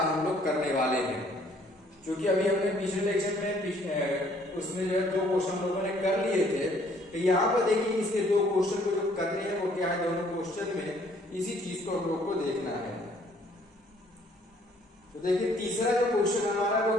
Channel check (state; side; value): normal; both; correlation 0.62